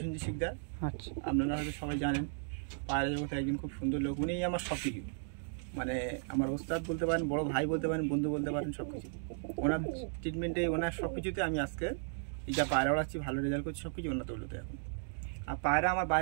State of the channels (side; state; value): left; silent; digital silence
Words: শিকদার। আচ্ছা। আপনারা হয়তো সবাই জানেন, পায়রা জগতে একজন খুব সুন্দর লোক, উনিই আমার সব কিছু। মানে আমার ওস্তাদ বলতে পারেন, বড় ভাই বলতে পারেন, বন্ধু বলতে পারেন, সব কিছু। ওনার ট্রিটমেন্টে, ওনার সব কিছুতে আমি আজকে এই যা পায়রা ওড়াচ্ছি, ভালো রেজাল্ট করছি, সব কিছু ওনার তৈলতে এখন। আর পায়রা আমার